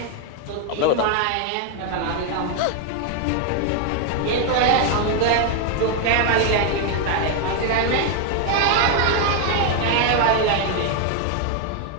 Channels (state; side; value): different; both; correlation 0.01